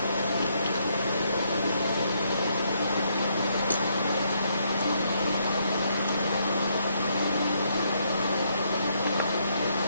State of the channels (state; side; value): inverted; both; correlation -0.74